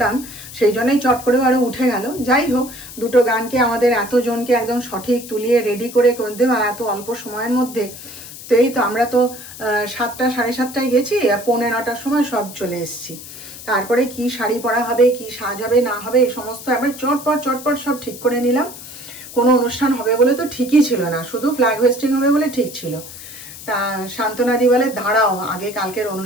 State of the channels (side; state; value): left; noise; hiss, 14 dB below the sound